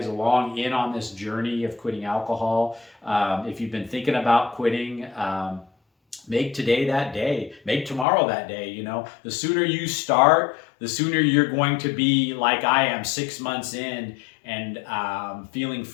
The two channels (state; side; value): drops out; right; at 8.1 s